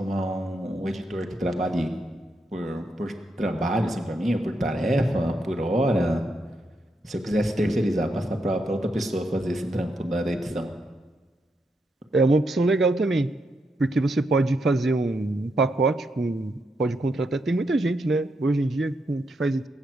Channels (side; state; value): both; normal; correlation 0.81